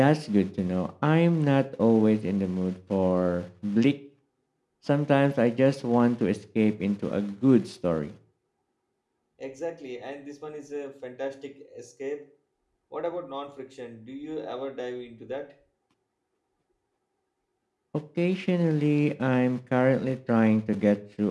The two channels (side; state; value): both; identical; correlation 1.00